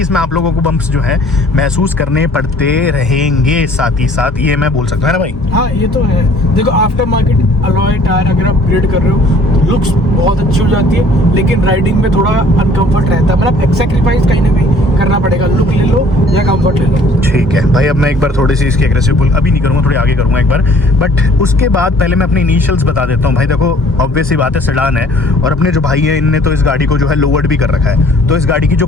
इसमें आप लोगों को बम्प्स जो है महसूस करने पड़ते रहेंगे साथ ही साथ, ये मैं बोल सकता हूँ ना भाई। हाँ ये तो है। देखो, आफ्टर मार्केट अलॉय टायर अगर आप अपग्रेड कर रहे हो, लुक्स बहुत अच्छी हो जाती है, लेकिन राइडिंग में थोड़ा अनकंफर्ट रहता है, मतलब एक सैक्रिफाइस कहीं ना कहीं करना पड़ेगा, लुक ले लो या कंफर्ट ले लो। ठीक है भाई, अब मैं एक बार थोड़ी सी इसकी एग्रेसिव पुल अभी नहीं करूँगा, थोड़ी आगे करूँगा एक बार, बट उसके बाद पहले मैं अपने इनिशियल्स बता देता हूँ। भाई देखो, ऑब्वियस सी बात है, सेडान है, और अपने जो भाई है इनने तो इस गाड़ी को जो है लोवर्ड भी कर रखा है, तो इस गाड़ी की जो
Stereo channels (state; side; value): normal; both; correlation 0.55